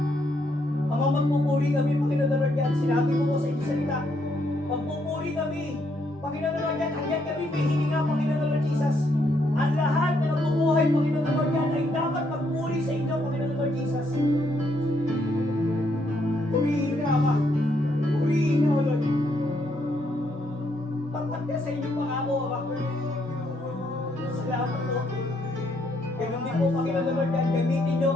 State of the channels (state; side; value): normal; both; correlation 0.74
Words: Ama, magpupuri kami, Panginoon the Lord God. Sinabi mo po sa inyong salita, magpupuri kami, Panginoon the Lord God, hanggang kami may hininga, Panginoon the Lord Jesus. Ang lahat na nabubuhay, Panginoon the Lord God, ay dapat magpuri sa inyo, Panginoon the Lord Jesus. Purihin ka, Ama. Purihin ka, O Lord. Tapat ka sa inyong pangako, Ama. Salamat po. Ganun din po, Panginoon the Lord God, gamitin niyo